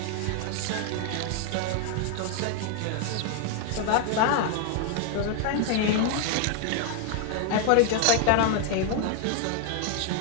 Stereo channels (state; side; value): different; both; correlation 0.00